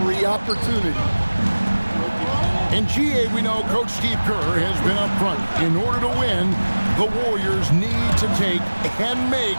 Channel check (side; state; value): both; inverted; correlation -1.00